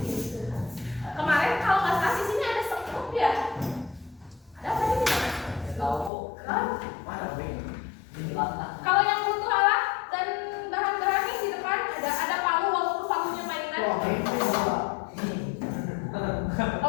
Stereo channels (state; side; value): drops out; right; at 6.1 s